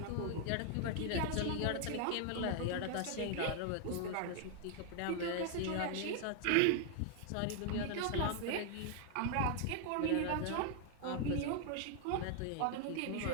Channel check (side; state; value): both; different; correlation 0.00